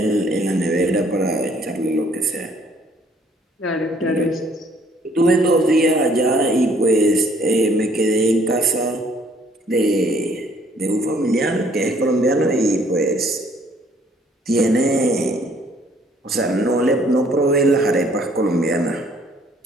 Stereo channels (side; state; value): both; normal; correlation 0.62